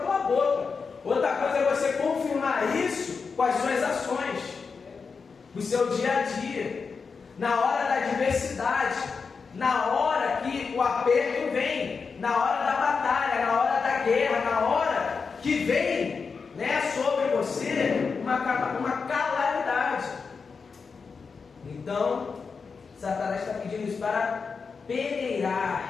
boca, outra coisa é você confirmar isso com as suas ações, no seu dia a dia, na hora da adversidade, na hora que o aperto vem, na hora da batalha, na hora da guerra, na hora que vem, né, sobre você uma calamidade. Então Satanás está pedindo isso para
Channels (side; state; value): right; quieter; 5.2 dB